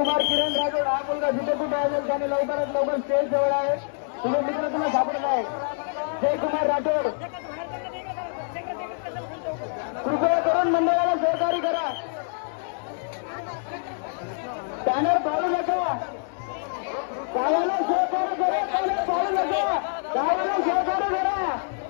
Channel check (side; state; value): right; silent; digital silence